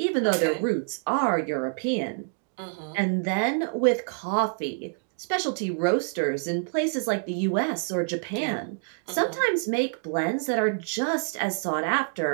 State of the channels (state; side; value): silent; left; 60 dB below the other